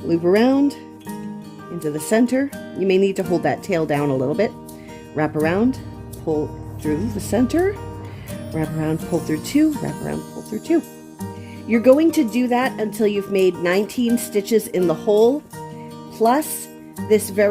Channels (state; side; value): identical; both; correlation 1.00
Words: Loop around into the center. You may need to hold that tail down a little bit. Wrap around, pull through the center, wrap around, pull through 2, wrap around, pull through 2. You're going to do that until you've made 19 stitches in the hole, plus this